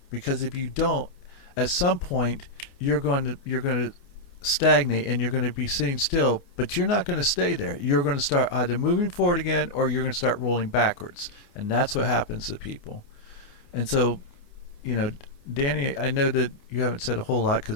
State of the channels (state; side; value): late; right; 29 ms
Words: because if you don't, at some point you're going to stagnate and you're going to be sitting still, but you're not going to stay there. You're going to start either moving forward again or you're going to start rolling backwards, and that's what happens to people. And so, Danny, I know that you haven't said a whole lot